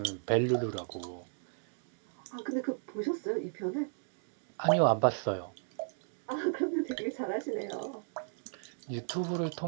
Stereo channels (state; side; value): silent; left; digital silence